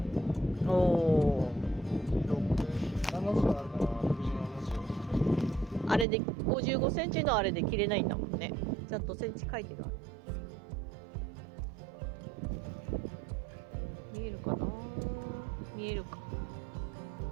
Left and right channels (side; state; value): left; drops out; at 6.1 s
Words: おー。70あるかな、60、70。あれで55センチのあれで切れないんだもんね。ちゃんとセンチ書いてる。見えるかな。見えるか。